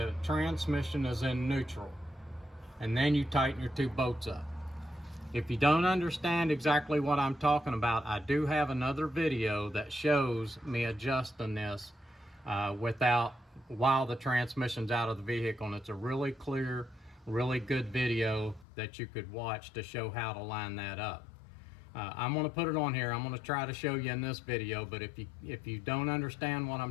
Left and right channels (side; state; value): right; drops out; at 18.7 s